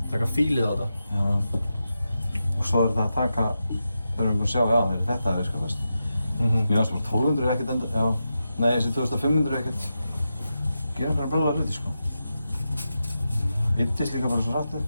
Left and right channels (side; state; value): both; inverted; correlation -0.89